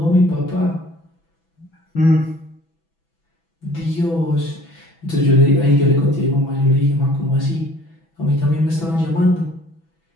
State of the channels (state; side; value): late; right; 6.0 ms